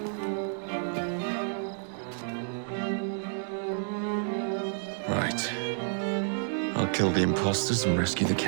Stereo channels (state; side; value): silent; left; 58 dB below the other